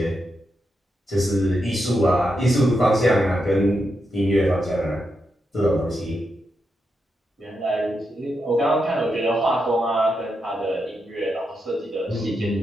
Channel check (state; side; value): normal; both; correlation 0.85